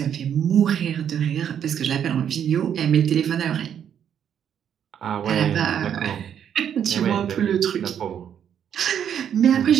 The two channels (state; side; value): quieter; left; 8.9 dB